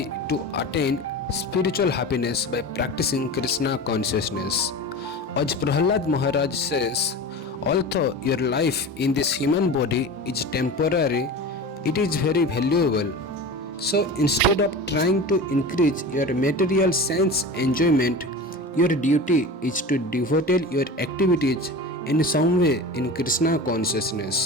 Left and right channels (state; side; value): normal; both; correlation 0.32